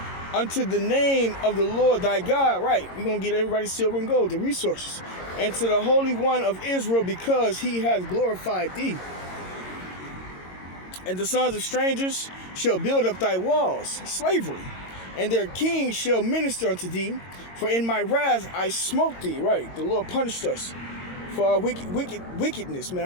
unto the name of the Lord thy God. Right, we're going to get everybody silver and gold, the resources. And to the Holy One of Israel, because he has glorified thee. And the sons of strangers shall build up thy walls, slavery, and their kings shall minister unto thee. For in my wrath I smote thee. Right, the Lord punished us for our wickedness, man,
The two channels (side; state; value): right; late; 22 ms